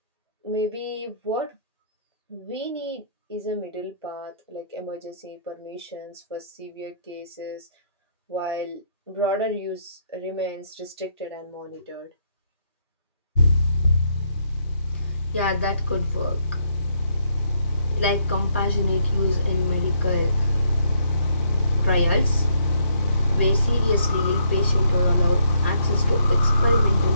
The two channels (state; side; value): inverted; both; correlation -0.71